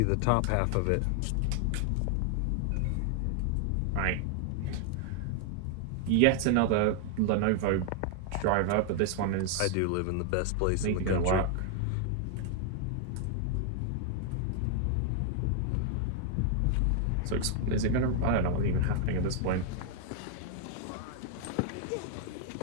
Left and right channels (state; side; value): different; both; correlation 0.00